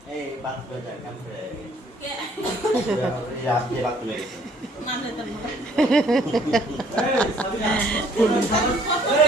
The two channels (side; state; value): both; normal; correlation 0.60